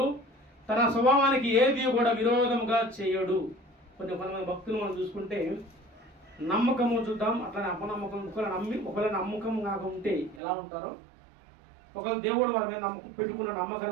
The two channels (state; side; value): drops out; left; at 10.4 s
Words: తన స్వభావానికి ఏది కూడా విరోధముగా చేయడు. కొంతమంది భక్తులు మనం చూసుకుంటే నమ్మకము చూద్దాం, అట్లానే అపనమ్మకం. ఒకవేళ నమ్మకం కాక ఉంటే ఎలా ఉంటారో, ఒకవేళ దేవుడు వారి మీద నమ్మకం పెట్టుకున్న